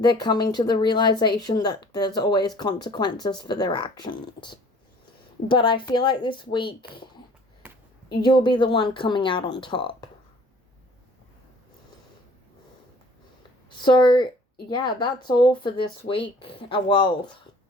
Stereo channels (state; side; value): normal; both; correlation 0.52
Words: coming to the realization that there's always consequences for their actions. But I feel like this week, you'll be the one coming out on top. So, yeah, that's all for this week. Well,